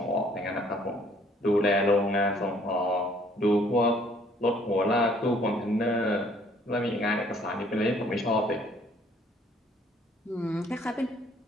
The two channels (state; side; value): normal; both; correlation 0.60